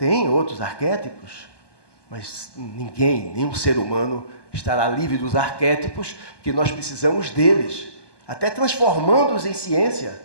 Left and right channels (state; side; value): late; right; 1.2 ms